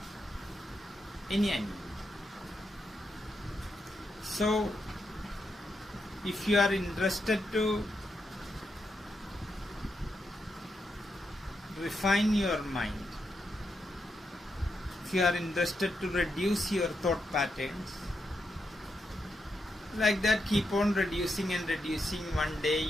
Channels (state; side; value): normal; both; correlation 0.83